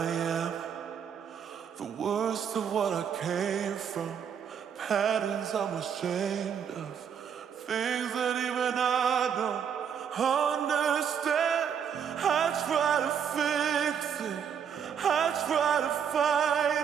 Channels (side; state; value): left; quieter; 7.7 dB